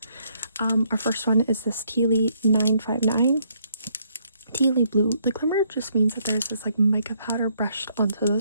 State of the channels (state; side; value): inverted; both; correlation -0.70